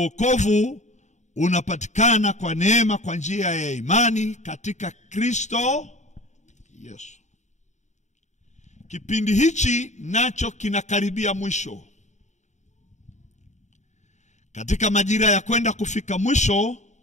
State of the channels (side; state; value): right; late; 0.34 ms